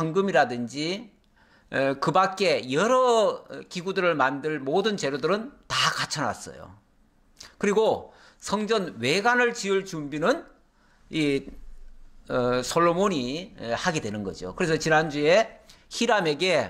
그 밖에 여러 기구들을 만들 모든 재료들은 다 갖춰놨어요. 그리고 성전 외관을 지을 준비는 이 솔로몬이 하게 되는 거죠. 그래서 지난주에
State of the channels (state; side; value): identical; both; correlation 1.00